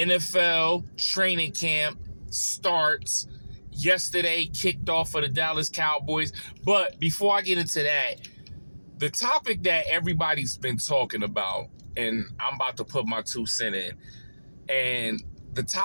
training camp starts. Yesterday kicked off for the Dallas Cowboys. But before I get into that, the topic that everybody's been talking about, and I'm about to put my 2 cents in, and the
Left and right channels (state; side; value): inverted; both; correlation -1.00